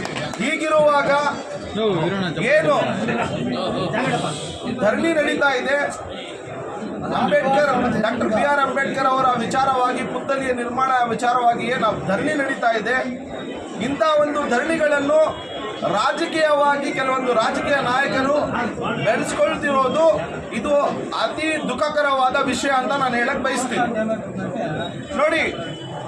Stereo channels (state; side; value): identical; both; correlation 1.00